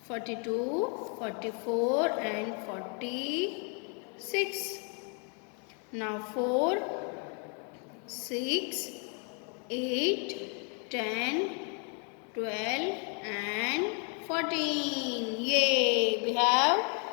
42, 44 and 46. Now 4, 6, 8, 10, 12 and 14. Yay! We have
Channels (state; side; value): quieter; right; 38.4 dB